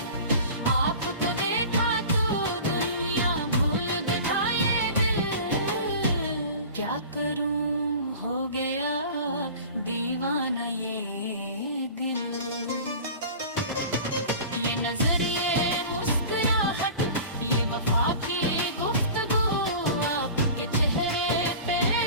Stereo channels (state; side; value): inverted; both; correlation -0.38